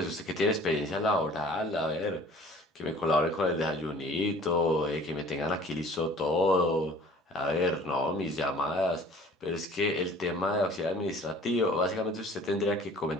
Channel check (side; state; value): both; normal; correlation 0.49